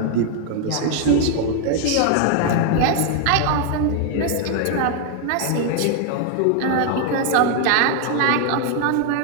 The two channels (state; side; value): different; both; correlation 0.00